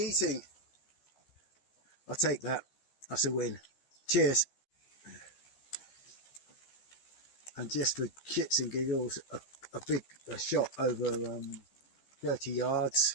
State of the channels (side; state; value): right; late; 14 ms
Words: I'll take that. That's a win. Cheers. And just for shits and giggles, a big shot over 30